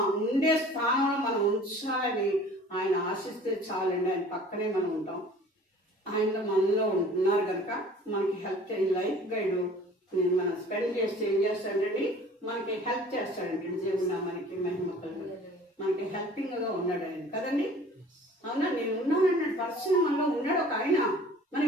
ఉండే స్థానంలో మనం ఉంచాలని ఆయన ఆశిస్తే చాలండి. ఆయన పక్కనే మనం ఉంటాం. ఆయన మనలో ఉంటున్నారు కనుక మనకి హెల్ప్ చేయండి. లైఫ్ గైడ్ మనం స్పెండ్ చేస్తే ఏం చేస్తాడండి? మనకి హెల్ప్ చేస్తాడండి. దేవుడు మనకి మహిమ కలుగుతుంది, మనకి హెల్పింగ్ గా ఉన్నాడు ఆయన కదండి. అవునా? నేను ఉన్నానన్నాడు పర్సన్ మనలో ఉన్నాడు ఒక ఆయన.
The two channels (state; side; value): normal; both; correlation 0.48